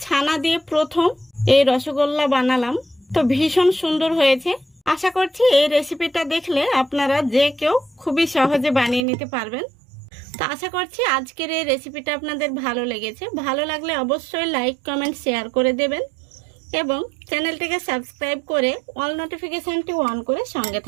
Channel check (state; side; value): drops out; left; at 9.1 s